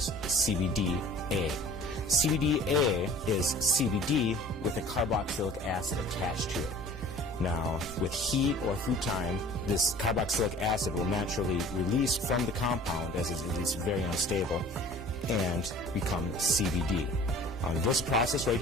CBDA. CBDA is CBD with a carboxylic acid attached to it. Now, with heat or through time, this carboxylic acid will naturally release from the compound, as it's very unstable, and become CBD. This process right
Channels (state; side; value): normal; both; correlation 0.46